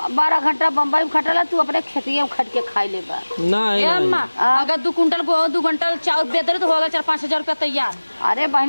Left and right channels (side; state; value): both; inverted; correlation -1.00